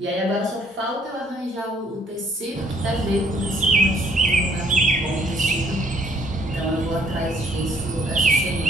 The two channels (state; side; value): normal; both; correlation 0.65